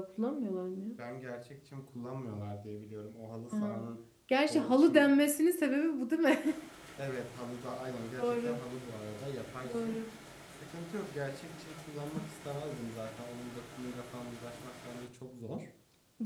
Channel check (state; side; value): identical; both; correlation 1.00